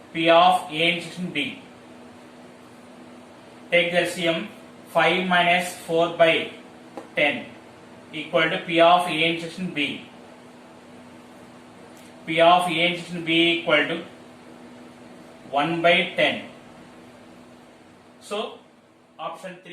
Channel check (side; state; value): both; identical; correlation 1.00